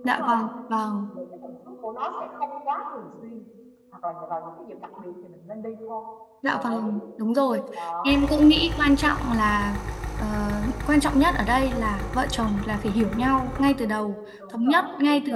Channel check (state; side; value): identical; both; correlation 1.00